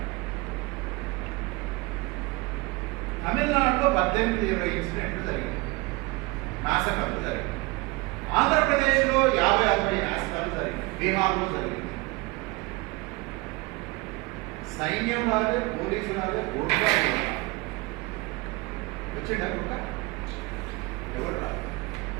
తమిళనాడులో 18-20 ఇన్సిడెంట్లు జరిగినాయి, నాశకాలు జరిగినాయి. ఆంధ్రప్రదేశ్లో 50-60 నాశకాలు జరిగినాయి. బీహార్లో జరిగింది. సైన్యం రాలే, పోలీసు రాలే, ఓట్లు వచ్చిండ గుట్ట ఎవరు రాదు.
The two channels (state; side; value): quieter; left; 24.9 dB